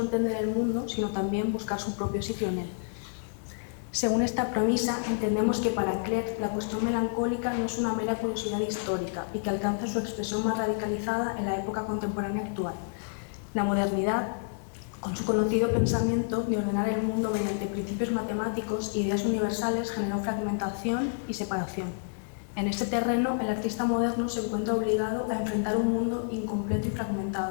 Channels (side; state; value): right; silent; 56 dB below the other